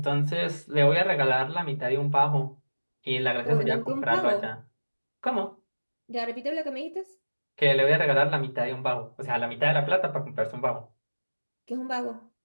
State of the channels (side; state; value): both; inverted; correlation -1.00